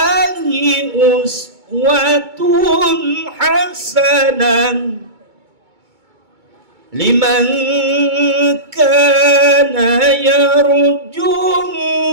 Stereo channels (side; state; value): left; late; 2.2 ms